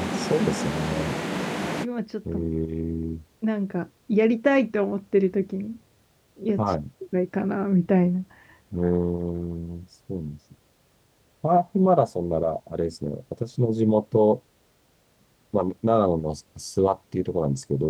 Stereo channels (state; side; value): identical; both; correlation 1.00